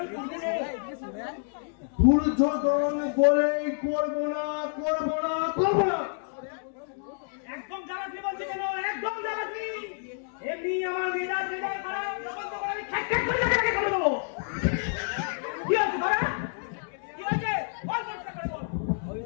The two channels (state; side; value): silent; right; digital silence